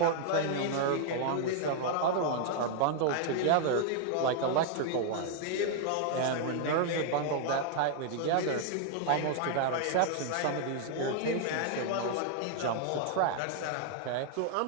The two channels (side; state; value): both; different; correlation 0.00